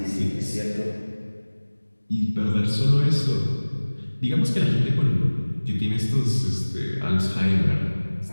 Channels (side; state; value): both; inverted; correlation -1.00